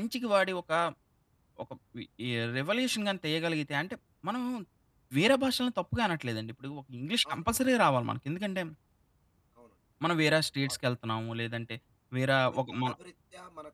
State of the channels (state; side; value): identical; both; correlation 1.00